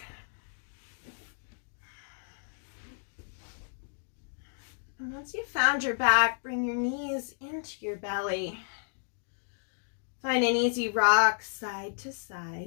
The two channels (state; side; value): silent; right; digital silence